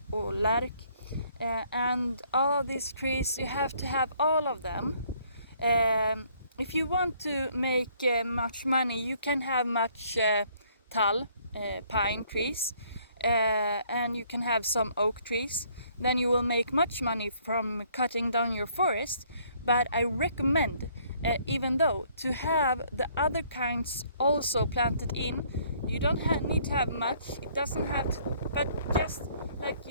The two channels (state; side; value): inverted; both; correlation -0.63